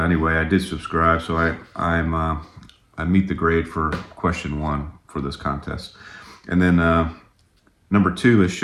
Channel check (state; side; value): identical; both; correlation 1.00